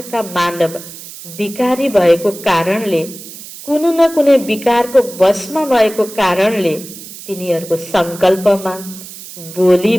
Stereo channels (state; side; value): noise; right; hiss, 14 dB below the sound